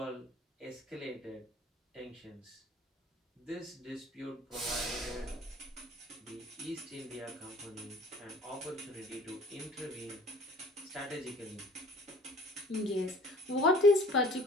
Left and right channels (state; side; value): normal; both; correlation 0.50